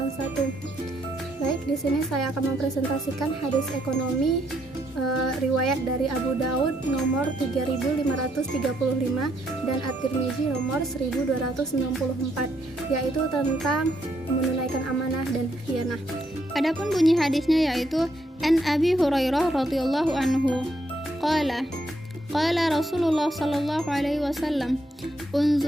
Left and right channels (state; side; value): normal; both; correlation 0.75